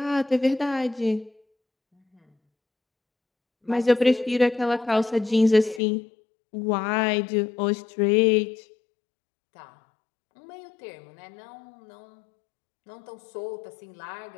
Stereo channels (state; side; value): drops out; right; at 5.8 s